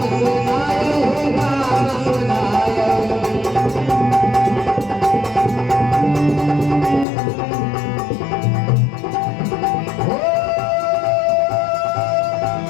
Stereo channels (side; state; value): right; drops out; at 7.1 s